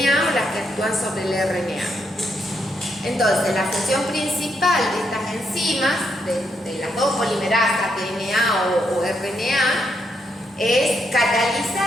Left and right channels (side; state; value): both; normal; correlation 0.79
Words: o las que actúan sobre el RNA. Entonces, la función principal de estas enzimas, de las dos polimerasas, DNA o RNA, es